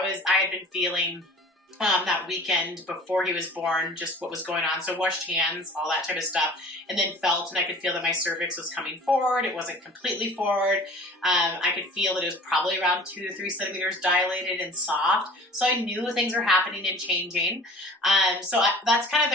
had been feeling that weekend before he was born, just what was going on. So washed hands, all that type of stuff, and then felt, and I could feel that my cervix was coming forward. It wasn't completely forward. I could feel that it was probably around 2 to 3 centimeters dilated and soft. So I knew things were happening and changing. That's kind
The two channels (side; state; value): both; normal; correlation 0.44